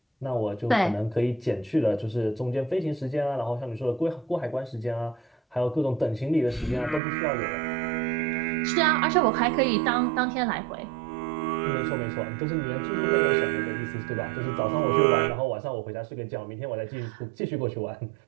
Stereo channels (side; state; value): left; drops out; at 7.0 s